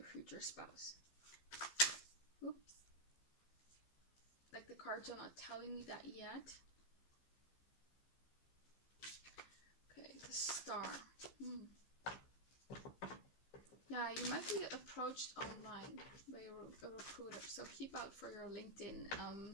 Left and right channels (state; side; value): late; right; 15 ms